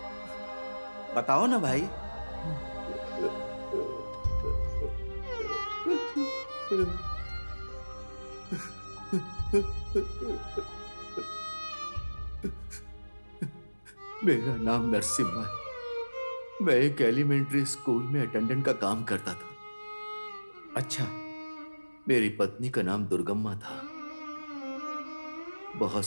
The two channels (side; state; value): both; inverted; correlation -1.00